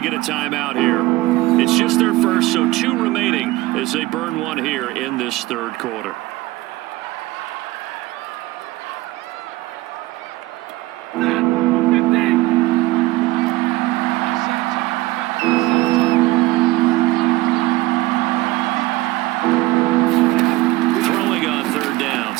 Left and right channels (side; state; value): left; quieter; 18.8 dB